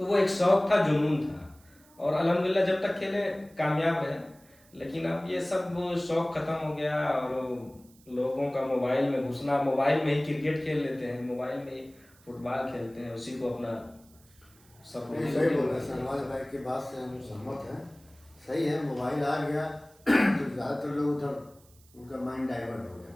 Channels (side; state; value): right; noise; hiss, 28 dB below the sound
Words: वो एक शौक था, जुनून था, और अल्हम्दुलिल्लाह जब तक खेले कामयाब रहे। लेकिन अब ये सब शौक खत्म हो गया और लोगों का मोबाइल में घुसना, मोबाइल में ही क्रिकेट खेल लेते हैं, मोबाइल में ही फुटबॉल खेलते हैं, उसी को अपना सब नहीं, सही बोल रहे हैं शहनवाज भाई की बात से हम सहमत हैं। सही है, मोबाइल आ गया तो ज़्यादातर लोग उधर उनका माइंड डाइवर्ट हो गया,